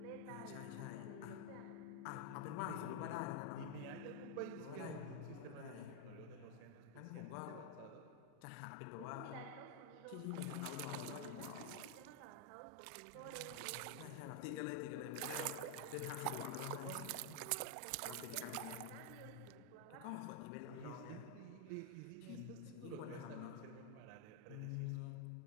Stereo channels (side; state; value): both; different; correlation 0.00